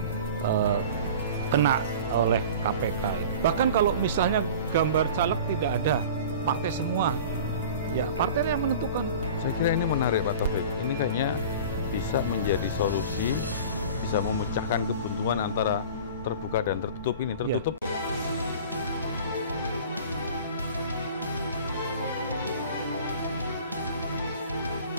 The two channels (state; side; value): inverted; both; correlation -0.40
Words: kena oleh KPK. Bahkan kalau misalnya gambar caleg tidak ada, partai semua, ya partai yang menentukan. Saya kira ini menarik Pak Taufik. Ini kayaknya bisa menjadi solusi, bisa memecahkan kebuntuan antara terbuka dan tertutup ini. Tertutup. Ya.